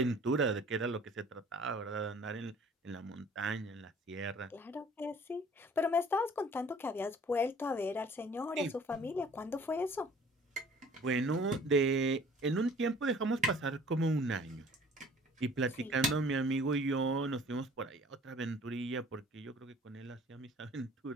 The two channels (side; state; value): both; normal; correlation 0.51